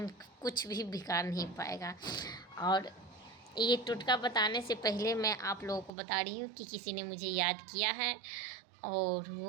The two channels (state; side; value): drops out; left; at 5.9 s